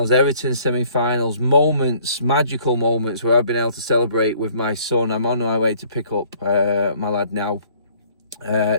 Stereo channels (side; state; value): both; inverted; correlation -0.58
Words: Everton semi-finals, moments, magical moments where I've been able to celebrate with my son. I'm on my way to pick up my lad now.